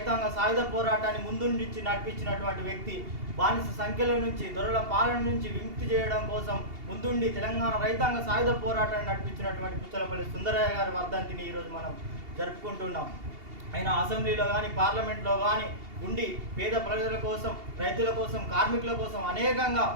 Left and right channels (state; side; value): late; left; 2.8 ms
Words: సాయుధ పోరాటాన్ని ముందుండి నడిపించినటువంటి వ్యక్తి, బానిస సంఖ్యల నుంచి, దొరల పాలన నుంచి విముక్తి చేయడం కోసం ముందుండి తెలంగాణ రైతాంగ సాయుధ పోరాటాన్ని నడిపించినటువంటి పుచ్చలపల్లి సుందరయ్య గారి వర్ధంతిని ఈరోజు మనం జరుపుకుంటున్నాం. ఆయన అసెంబ్లీలో కానీ పార్లమెంట్లో కానీ ఉండి పేద ప్రజల కోసం, రైతుల కోసం, కార్మికుల కోసం అనేకంగా